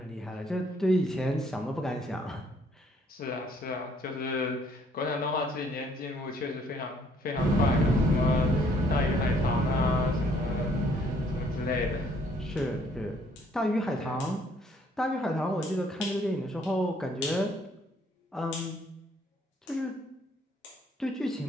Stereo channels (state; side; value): normal; both; correlation 0.64